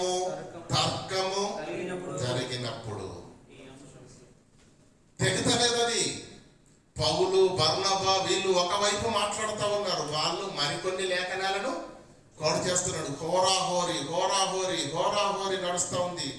తర్కము జరిగినప్పుడు. తెగతలేదని పౌలు, బర్నబా వీళ్ళు ఒకవైపు మాట్లాడుతూ ఉన్నారు, వాళ్ళు మరికొన్ని లేఖనాలను కోడ్ చేస్తున్నాడు. హోరాహోరీ నడుస్తూ ఉంది.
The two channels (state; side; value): identical; both; correlation 1.00